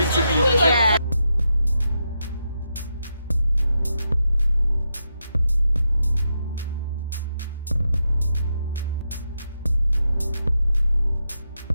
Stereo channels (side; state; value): both; inverted; correlation -0.84